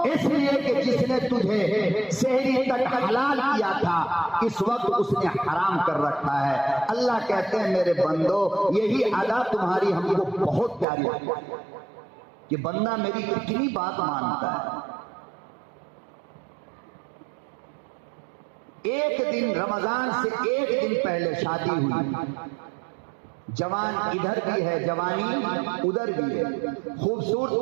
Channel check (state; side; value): drops out; left; at 10.9 s